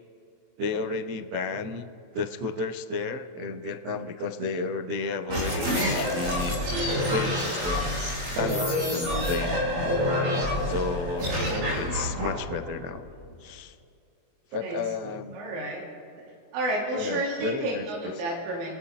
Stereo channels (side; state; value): left; late; 23 ms